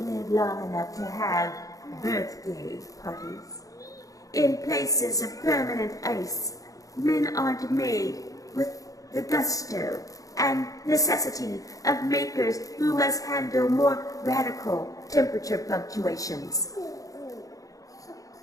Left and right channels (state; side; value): late; right; 0.17 ms